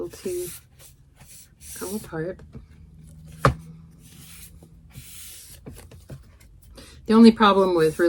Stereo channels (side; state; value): both; identical; correlation 1.00